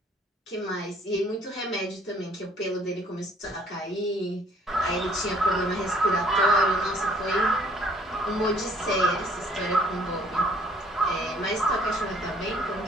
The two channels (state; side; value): normal; both; correlation 0.60